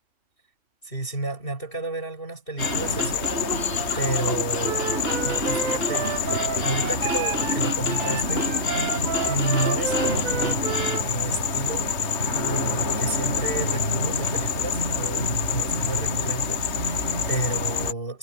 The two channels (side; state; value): right; late; 3.2 ms